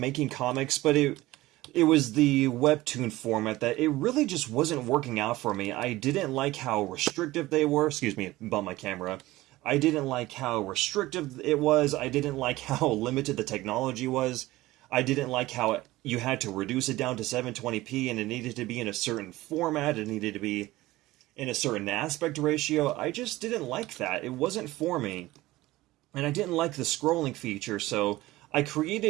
comics, but it was the Webtoon format that it really just wasn't working out for me. I didn't like how restrictive they were. Excuse me, bump my camera. I didn't like how restrictive it was. I didn't like how limited the technology was. I didn't like how you had to reduce it down to 720p and it needed to be in a certain format. It needed to be in a certain aspect ratio. I just didn't like that. It wasn't for me. And I didn't like the scrolling feature, so I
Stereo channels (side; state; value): left; quieter; 18.0 dB